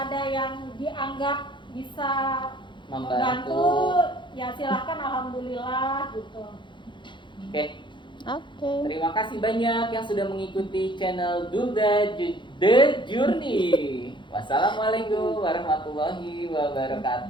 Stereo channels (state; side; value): late; right; 0.23 ms